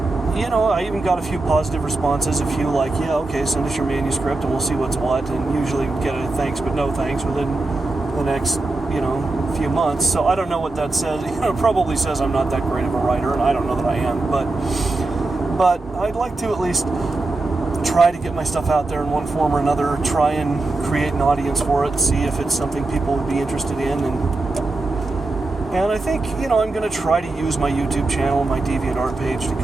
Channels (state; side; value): quieter; left; 3.2 dB